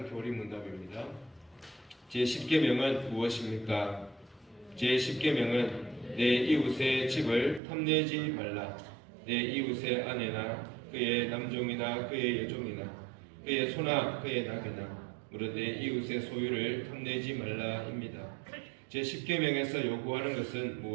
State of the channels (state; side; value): drops out; left; at 7.6 s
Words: 교리문답입니다. 제10계명은 무엇입니까? 제10계명은 내 이웃의 집을 탐내지 말라. 내 이웃의 아내나 그의 남종이나 그의 여종이나 그의 소나 그의 낙이나 무릇 내 이웃의 소유를 탐내지 말라입니다. 제10계명에서 요구하는 것은